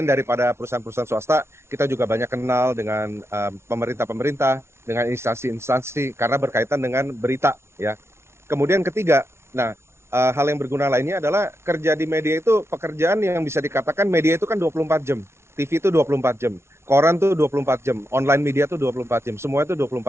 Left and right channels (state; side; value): late; left; 0.13 ms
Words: daripada perusahaan-perusahaan swasta, kita juga banyak kenal dengan pemerintah-pemerintah, dengan instansi-instansi karena berkaitan dengan berita ya. Kemudian ketiga, hal yang berguna lainnya adalah kerja di media itu pekerjaan yang bisa dikatakan media itu kan 24 jam. TV itu 24 jam, koran tuh 24 jam, online media tuh 24 jam, semua itu